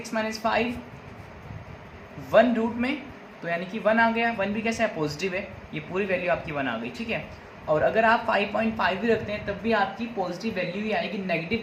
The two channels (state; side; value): identical; both; correlation 1.00